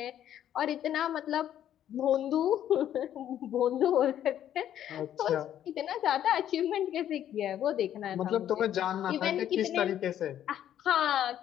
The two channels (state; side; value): quieter; right; 10.9 dB